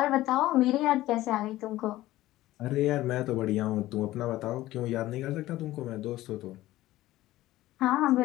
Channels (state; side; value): quieter; right; 16.0 dB